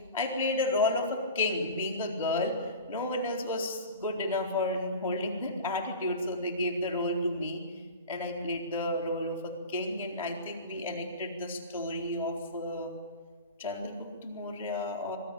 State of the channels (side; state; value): both; inverted; correlation -0.34